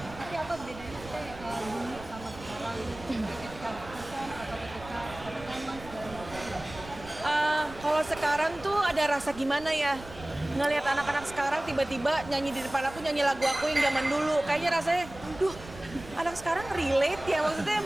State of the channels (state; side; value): noise; right; rumble, 16 dB below the sound